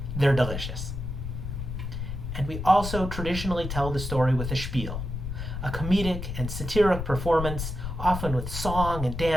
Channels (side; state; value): left; noise; rumble, 5 dB below the sound